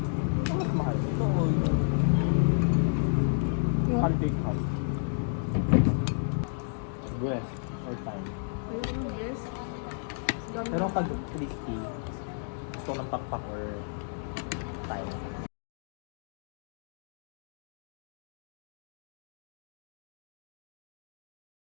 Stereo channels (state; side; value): silent; right; digital silence